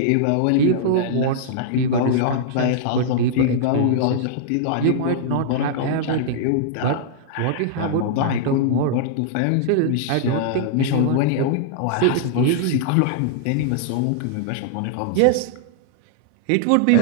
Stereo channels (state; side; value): different; both; correlation -0.01